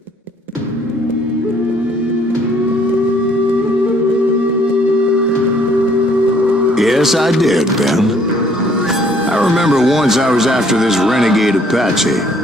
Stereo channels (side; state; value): both; normal; correlation 0.62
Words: Yes, I did, Ben. I remember once I was after this renegade Apache,